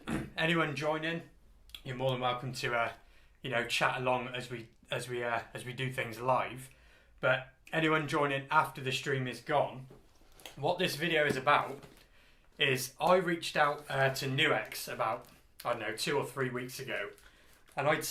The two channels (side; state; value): both; identical; correlation 1.00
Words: anyone joining, you're more than welcome to, chat along as we do things live. But anyone joining after the stream is gone, what this video is about is I reached out to NUX about 2 or 3 weeks ago, and I'd